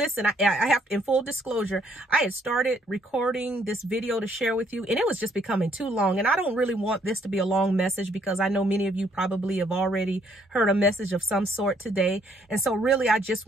I have, in full disclosure, I had started recording this video to share with you, and it was just becoming too long. And I don't really want this to be a long message because I know many of you probably have already heard a message of some sort today. And so really, I just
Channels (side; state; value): both; normal; correlation 0.67